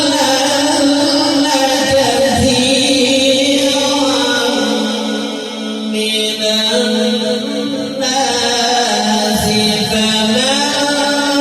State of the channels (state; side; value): identical; both; correlation 1.00